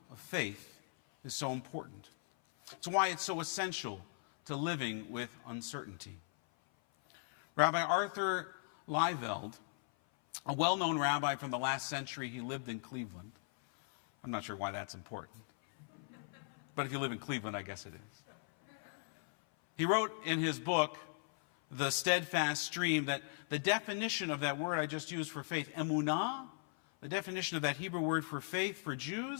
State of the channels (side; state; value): right; silent; 52 dB below the other